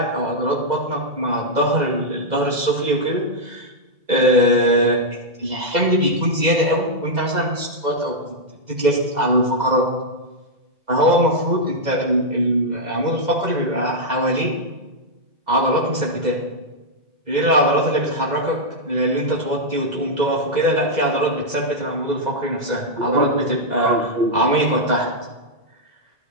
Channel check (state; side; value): late; left; 2.0 ms